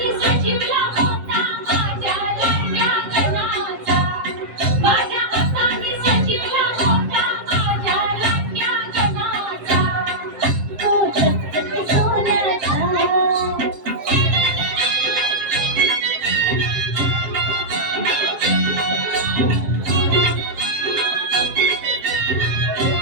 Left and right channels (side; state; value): left; late; 7.4 ms